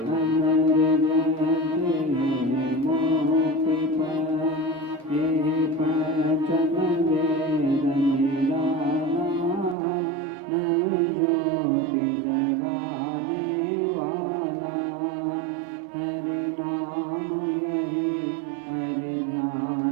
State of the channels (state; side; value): drops out; left; at 9.8 s